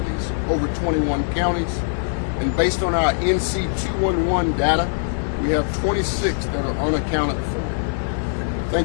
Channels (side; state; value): right; silent; 58 dB below the other